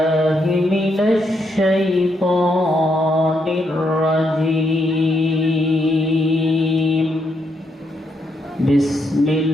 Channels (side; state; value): both; normal; correlation 0.78